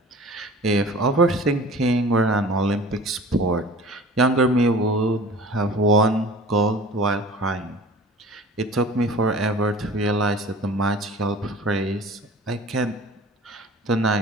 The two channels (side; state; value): both; normal; correlation 0.43